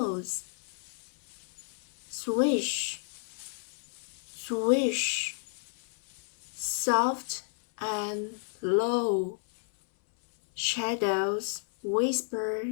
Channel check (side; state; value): right; silent; 57 dB below the other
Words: Swish, swish, soft and low. Shadows whisper